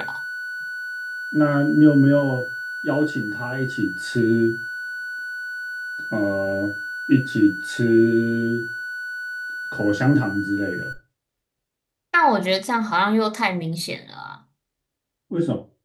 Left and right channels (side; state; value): both; identical; correlation 1.00